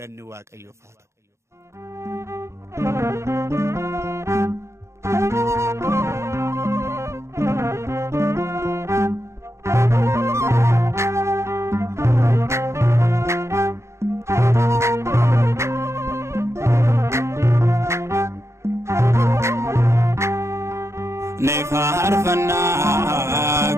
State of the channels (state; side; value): late; left; 0.14 ms